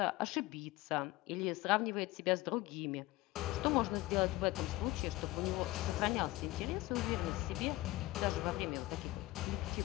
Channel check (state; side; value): quieter; right; 18.9 dB